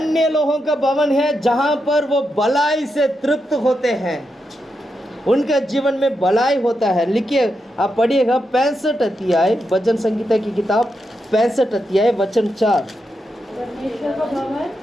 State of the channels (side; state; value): both; normal; correlation 0.85